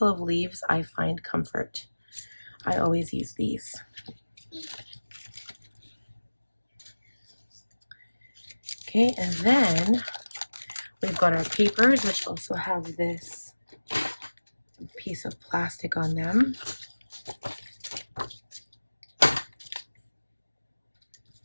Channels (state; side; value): inverted; both; correlation -1.00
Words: of leaves, I find comfort." I always use these. Okay, and then we've got our papers, which also have this piece of plastic on them.